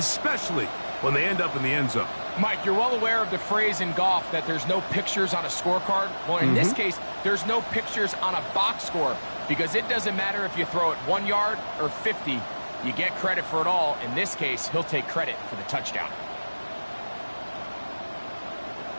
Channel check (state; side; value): inverted; both; correlation -1.00